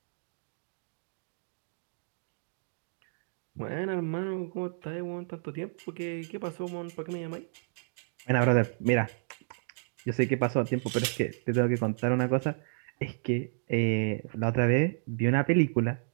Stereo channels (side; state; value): left; silent; digital silence